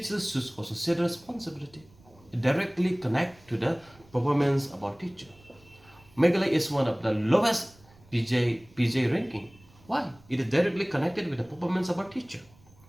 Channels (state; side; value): noise; right; rumble, 27 dB below the sound